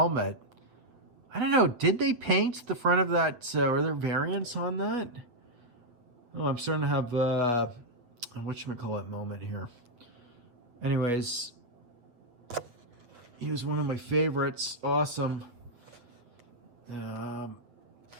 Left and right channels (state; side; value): late; left; 8.3 ms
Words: I don't know, did they paint the front of that? Are there variants on that? Oh, I'm starting to have a whatchamacallit moment here. Anyways, he was one of my favorites. Awesome.